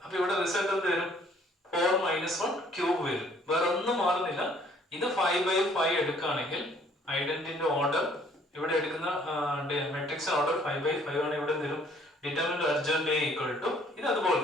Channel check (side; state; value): both; normal; correlation 0.60